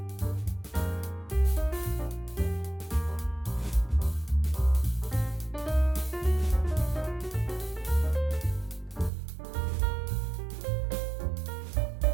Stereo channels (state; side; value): drops out; left; at 9.1 s